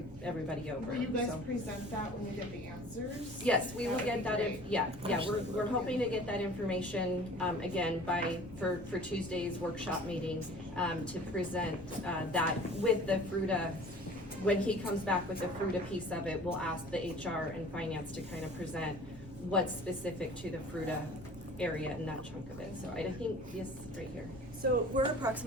over. Will you guys So. present that when you get the answers? Yes, we will get that, great. we're hoping to get that information, again, for Tuesday's workshop meeting, to present, that with the FRUTA. When he comes back with the FRUTA piece of it, we'll ask the HR and finance to kind of present what's specific to the FRUTA area and that chunk of it. So I think, yes, right here. So we're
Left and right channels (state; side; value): normal; both; correlation 0.46